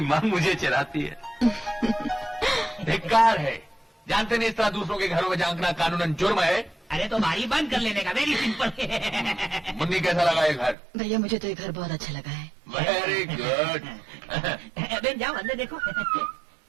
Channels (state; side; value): drops out; left; at 10.8 s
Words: माँ मुझे चराती है। धिक्कार है। जानते नहीं, इस तरह दूसरों के घरों में झांकना कानूनन जुर्म है। अरे तो बारी बंद कर लेने का, वेरी सिंपल। मुन्नी कैसा लगा ये घर? भैया मुझे तो ये घर बहुत अच्छा लगा है। Very good. बेन जाओ अंदर देखो।